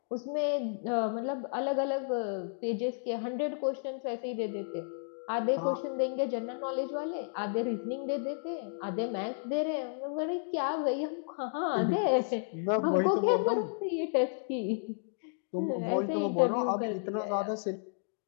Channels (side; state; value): right; silent; digital silence